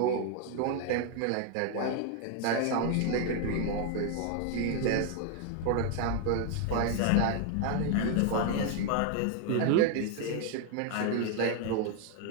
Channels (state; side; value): different; both; correlation 0.00